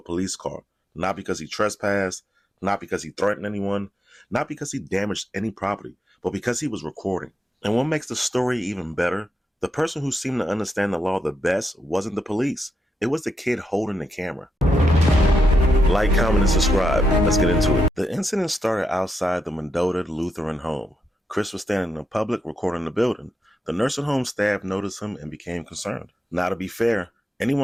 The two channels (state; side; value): normal; both; correlation 0.84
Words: police car. Not because he trespassed, not because he threatened anyone, not because he damaged any property, but because he was recording. And what makes the story even better, the person who seemed to understand the law the best wasn't the police. It was the kid holding the camera. Like, comment, and subscribe. Let's get into it. The incident started outside the Mendota Lutheran Home. Chris was standing in public recording the building. The nursing home staff noticed him and became concerned. Now, to be fair,